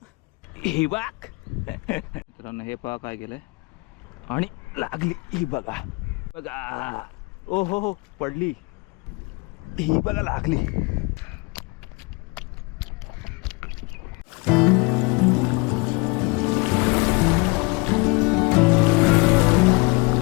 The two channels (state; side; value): quieter; right; 27.9 dB